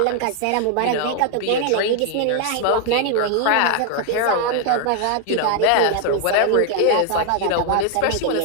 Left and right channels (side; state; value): both; different; correlation 0.00